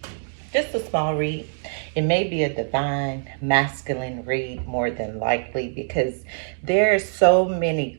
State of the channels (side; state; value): left; silent; digital silence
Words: just a small read. It may be a divine masculine read more than likely because there are so many